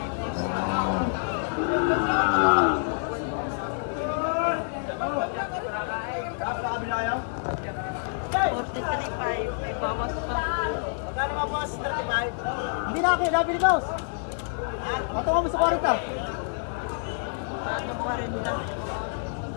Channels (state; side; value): silent; right; 57 dB below the other